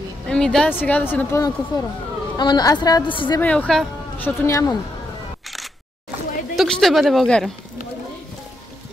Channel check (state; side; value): normal; both; correlation 0.81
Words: Еми да, сега да си напълна куфара. Ама аз трябва да си взема елха, защото нямам. Тук ще бъде България.